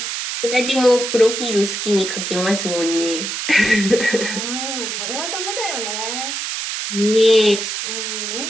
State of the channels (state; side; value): noise; right; hiss, 4 dB below the sound